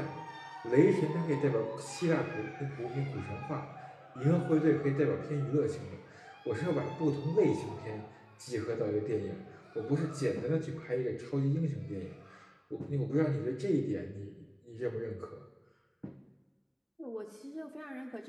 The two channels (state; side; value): identical; both; correlation 1.00